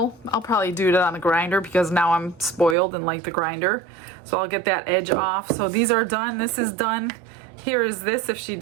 I'll probably do it on the grinder because now I'm spoiled and like the grinder. So I'll get that edge off. So these are done, this is done. Here is this if she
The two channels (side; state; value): left; drops out; at 2.8 s